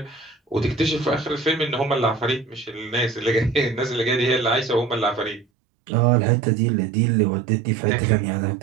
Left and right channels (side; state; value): left; drops out; at 5.5 s